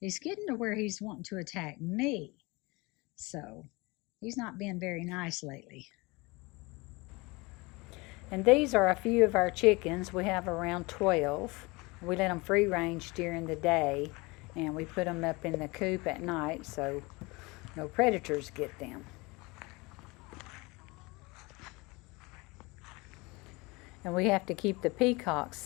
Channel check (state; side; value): quieter; right; 24.9 dB